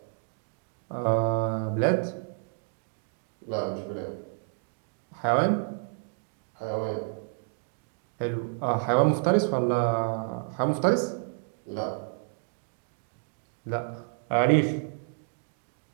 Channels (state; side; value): silent; left; digital silence